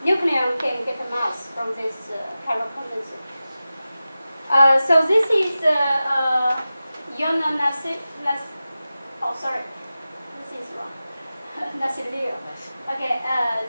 nucleon can get a mass from this chiral condensate. So this is oh, sorry, this is wrong. Nassilio. Okay,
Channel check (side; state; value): both; inverted; correlation -0.95